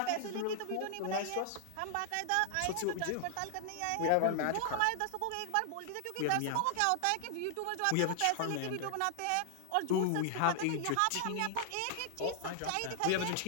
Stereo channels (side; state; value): both; different; correlation 0.00